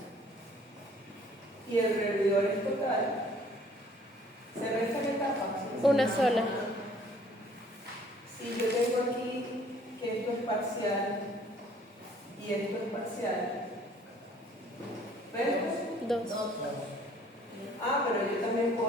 y el revidor es total, ¿se restan etapas? Una sola. Si yo tengo aquí que esto es parcial y esto es parcial, ¿ves? Dos. Ah, pero yo también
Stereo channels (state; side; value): normal; both; correlation 0.57